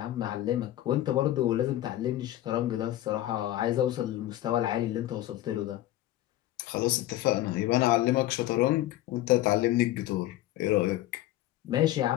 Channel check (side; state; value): right; quieter; 14.5 dB